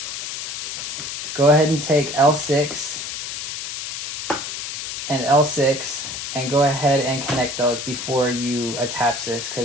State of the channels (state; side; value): noise; left; hiss, 5 dB below the sound